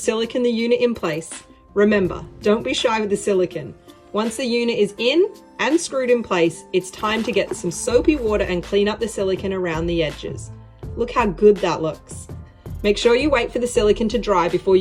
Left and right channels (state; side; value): identical; both; correlation 1.00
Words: the unit in place. Remember, don't be shy with the silicone. Once the unit is in and screwed in place, it's time to get some soapy water and clean up the silicone around the edges. Look how good that looks. Make sure you wait for the silicone to dry before